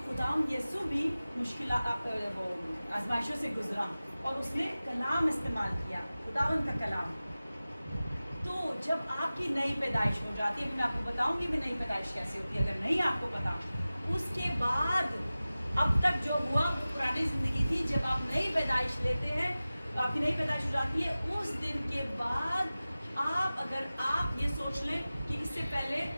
खुदाम यीशु भी मुश्किल आजमाइशों से गुजरा और उसने कलाम इस्तेमाल किया, खुदावन का कलाम। तो जब आपकी नई पैदाइश हो जाती है, मैं आपको बताऊंगी भी नई पैदाइश कैसे होती है, अगर नहीं आपको पता। उसके बाद अब तक जो हुआ वो पुरानी ज़िंदगी थी। जब आप नई पैदाइश लेते हैं, आपकी नई पैदाइश हो जाती है, उस दिन के बाद अगर आप ये सोच लें कि इससे पहले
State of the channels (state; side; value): inverted; both; correlation -0.97